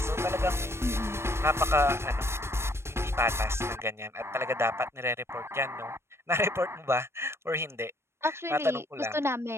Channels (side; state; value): left; late; 0.12 ms